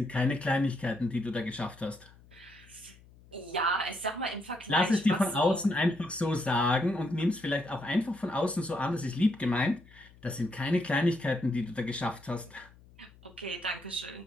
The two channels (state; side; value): noise; left; hum, 25 dB below the sound